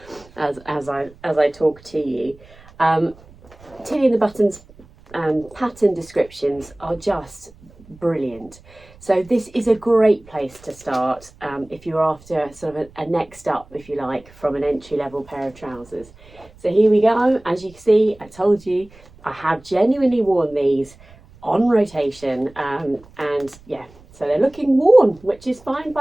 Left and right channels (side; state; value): right; noise; rumble, 24 dB below the sound